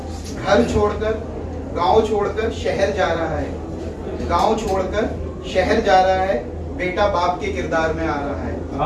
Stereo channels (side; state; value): both; identical; correlation 1.00